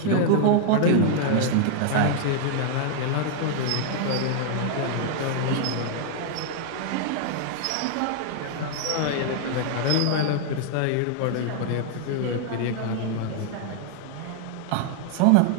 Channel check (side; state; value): both; different; correlation 0.00